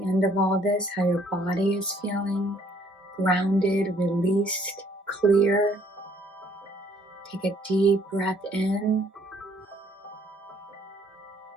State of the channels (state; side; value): normal; both; correlation 0.63